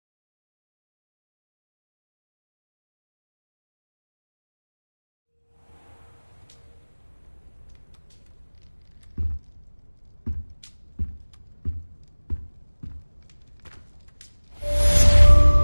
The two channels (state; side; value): inverted; both; correlation -1.00